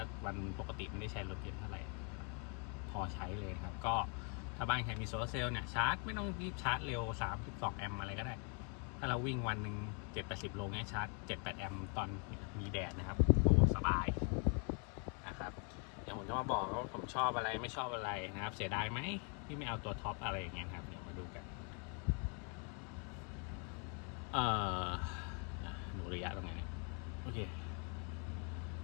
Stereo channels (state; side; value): quieter; right; 38.1 dB